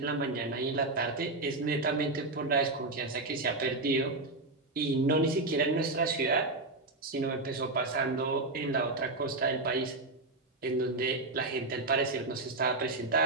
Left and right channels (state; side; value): quieter; left; 3.1 dB